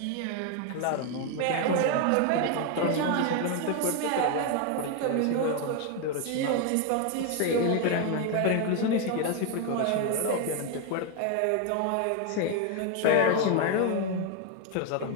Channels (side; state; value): both; different; correlation 0.01